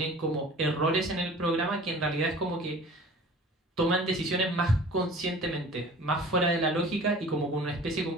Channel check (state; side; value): normal; both; correlation 0.44